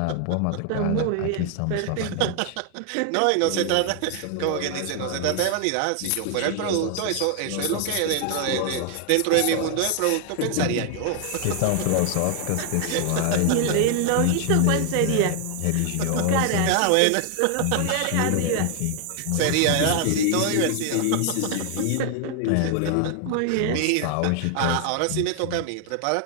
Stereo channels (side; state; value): both; different; correlation 0.00